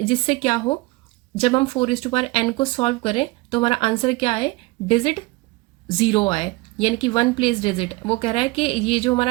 क्या हो, जब हम 4n को सॉल्व करें तो हमारा आंसर क्या है, डिजिट 0 आए, यानी कि 1 प्लेस डिजिट। वो कह रहा है कि ये जो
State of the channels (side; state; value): left; quieter; 22.8 dB